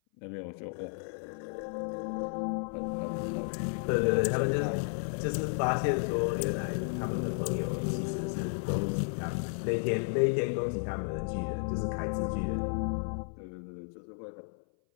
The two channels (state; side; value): silent; right; 56 dB below the other